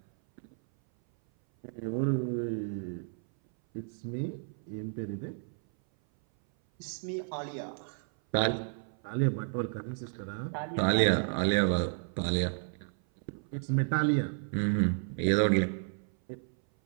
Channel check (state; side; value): silent; left; 56 dB below the other